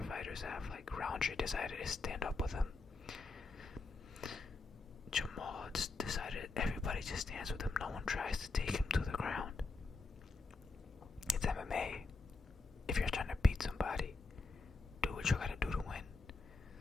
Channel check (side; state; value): right; quieter; 3.7 dB